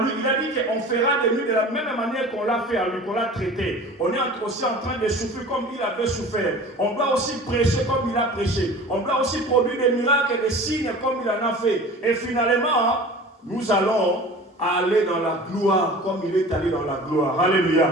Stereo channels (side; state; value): both; normal; correlation 0.40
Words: lui. Il a dit qu'on fera de lui de la même manière qu'on l'a fait à lui, qu'on l'a traité. On est aussi en train de souffrir comme il avait souffert. On doit aussi prêcher comme il a prêché. On doit aussi produire des miracles et des signes comme il en a fait. Et finalement, nous allons aller dans la gloire comme il est allé dans la gloire. Alléluia.